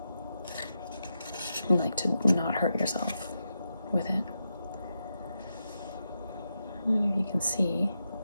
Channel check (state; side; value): inverted; both; correlation -0.86